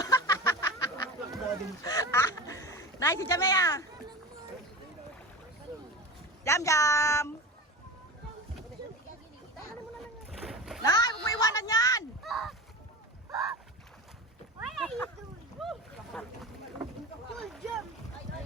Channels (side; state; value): both; normal; correlation 0.30